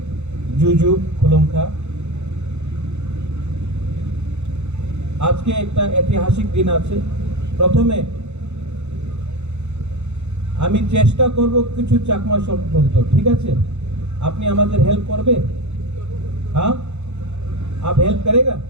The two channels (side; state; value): left; late; 0.82 ms